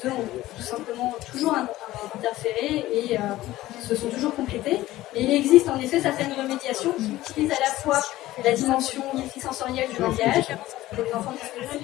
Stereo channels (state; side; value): quieter; right; 16.1 dB